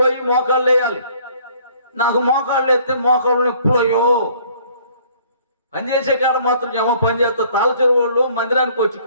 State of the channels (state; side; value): inverted; both; correlation -0.58